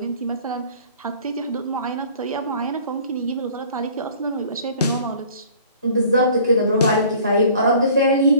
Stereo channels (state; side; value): inverted; both; correlation -0.51